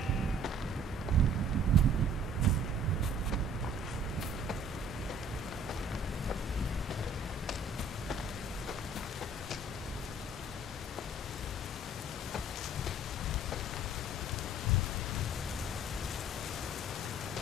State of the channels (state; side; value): normal; both; correlation 0.54